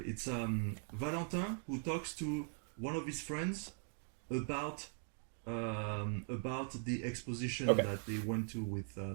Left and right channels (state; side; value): silent; left; 50 dB below the other